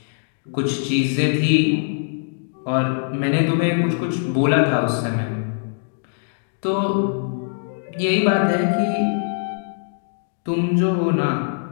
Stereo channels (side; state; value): right; silent; digital silence